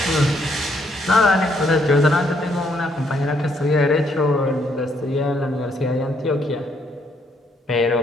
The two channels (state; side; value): normal; both; correlation 0.71